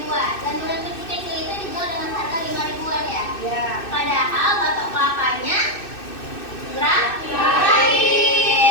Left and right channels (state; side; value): late; right; 2.6 ms